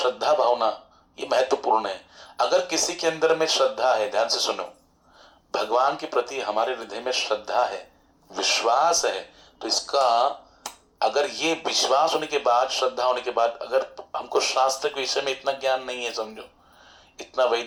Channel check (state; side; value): identical; both; correlation 1.00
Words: भावना, ये महत्वपूर्ण है। अगर किसी के अंदर में श्रद्धा है, ध्यान से सुनो, भगवान के प्रति हमारे हृदय में श्रद्धा है, विश्वास है, तो इसका अगर ये विश्वास होने के बाद, श्रद्धा होने के बाद, अगर हमको शास्त्र के विषय में इतना ज्ञान नहीं है, समझो इतना